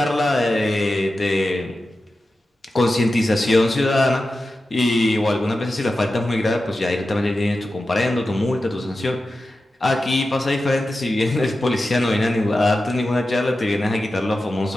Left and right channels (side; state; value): both; normal; correlation 0.92